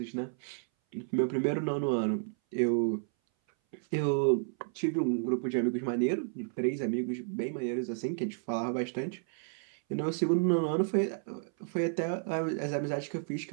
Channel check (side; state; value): left; silent; 57 dB below the other